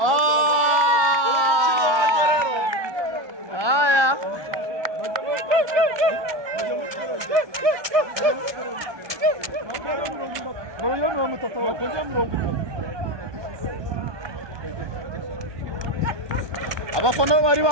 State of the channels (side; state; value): left; late; 1.2 ms